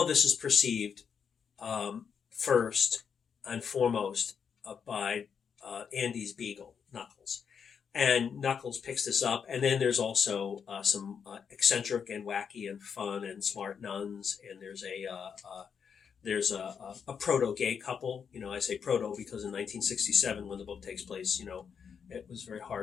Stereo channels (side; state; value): right; quieter; 6.9 dB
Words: of this is perceived first and foremost by Andy's beagle, Knuckles. And Knuckles picks this up, and then there's also some eccentric and wacky and fun and smart nuns, and there's a proto-gay couple. I say proto because in 1967, when the book takes place, it was very